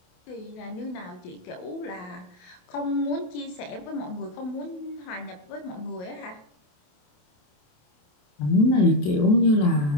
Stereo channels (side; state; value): right; late; 28 ms